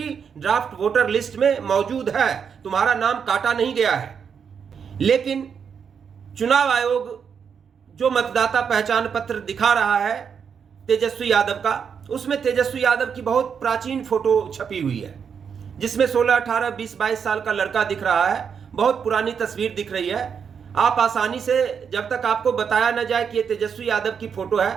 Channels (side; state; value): left; quieter; 6.9 dB